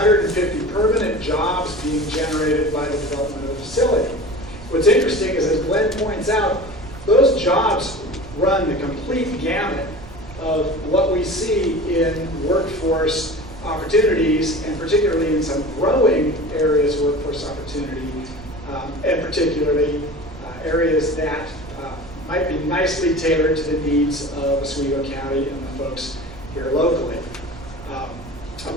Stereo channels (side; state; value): right; noise; rumble, 17 dB below the sound